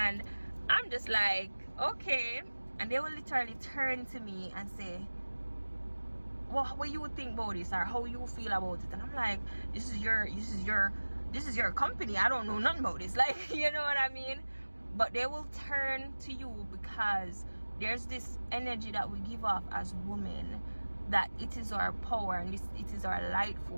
I'm just like, okay. And they will literally turn to me and say, well, what you think about this, or how you feel about it? And I'm like, this is your company. I don't know nothing about this. Like, you know what I mean? But they will turn to you because there's this energy that we give off as women, that it is our power and it is our light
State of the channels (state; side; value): inverted; both; correlation -1.00